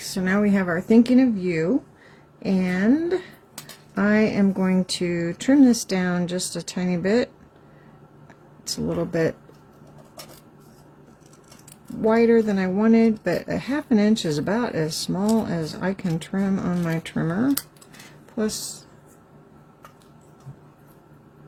now we have our thinking of you, and I am going to trim this down just a tiny bit. It's a little bit wider than I wanted, but a 1/2 inch is about as small as I can trim on my trimmer. Plus,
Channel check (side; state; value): both; identical; correlation 1.00